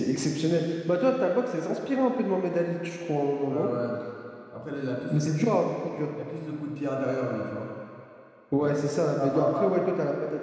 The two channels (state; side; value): identical; both; correlation 1.00